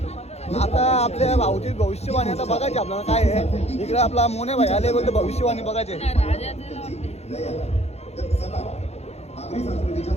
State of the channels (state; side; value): late; right; 0.31 ms